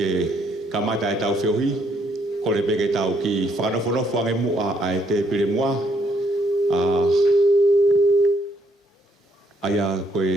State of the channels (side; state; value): both; normal; correlation 0.71